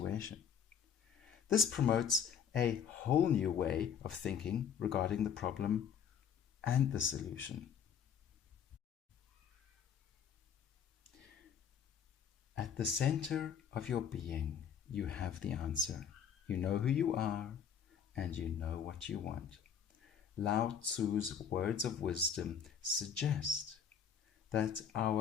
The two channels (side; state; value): right; quieter; 7.7 dB